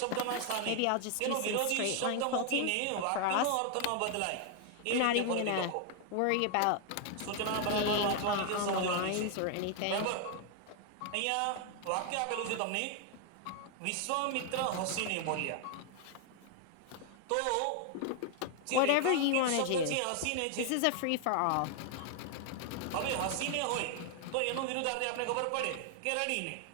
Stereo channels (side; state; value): both; different; correlation 0.00